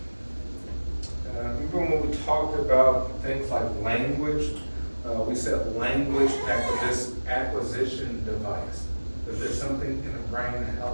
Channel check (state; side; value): inverted; both; correlation -1.00